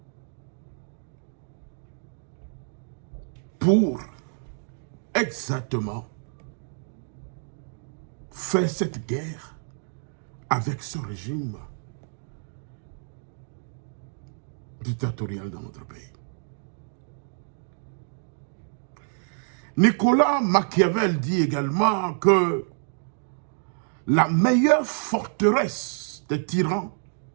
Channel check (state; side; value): silent; left; digital silence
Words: pour exactement faire cette guerre avec ce régime dictatorial dans notre pays. Nicolas Machiavel dit également que la meilleure forteresse des tyrans,